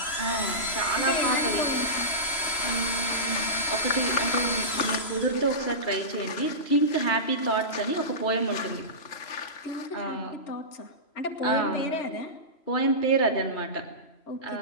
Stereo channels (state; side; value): late; right; 3.0 ms